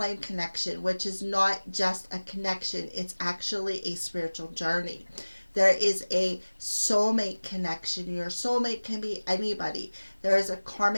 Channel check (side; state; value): both; inverted; correlation -1.00